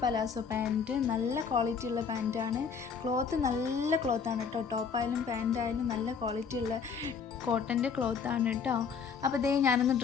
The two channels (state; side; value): quieter; right; 6.1 dB